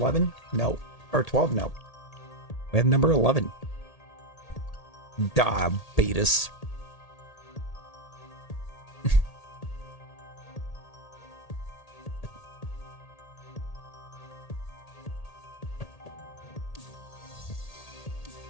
No. Or 12? No. We have number 11. Diabetes.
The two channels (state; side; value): late; right; 1.8 ms